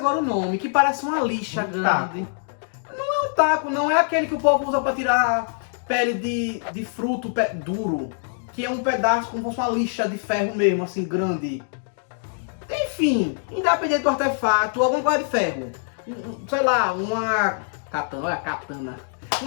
o nome, que parece uma lixa grande. Não é um taco, não é aquele que o povo usa pra tirar pele de fruto duro, que é um pedaço como se fosse uma lixa de ferro mesmo, assim, grande. Enfim, independente do artefato, alguma coisa de ferro. Sei lá, uma katana, olha a katana.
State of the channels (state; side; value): silent; right; digital silence